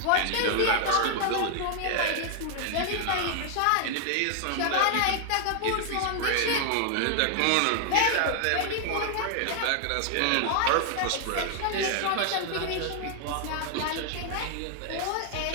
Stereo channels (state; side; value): different; both; correlation 0.00